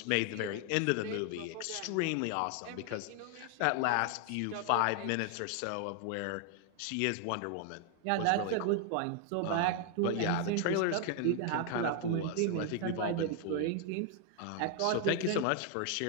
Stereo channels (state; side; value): different; both; correlation 0.00